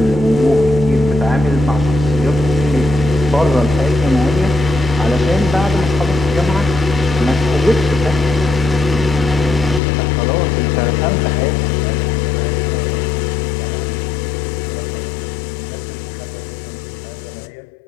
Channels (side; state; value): right; drops out; at 9.8 s